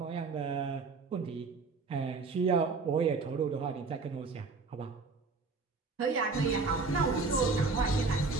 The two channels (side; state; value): left; quieter; 4.2 dB